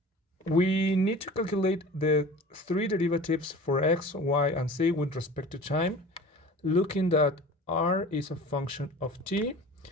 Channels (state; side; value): normal; both; correlation 0.40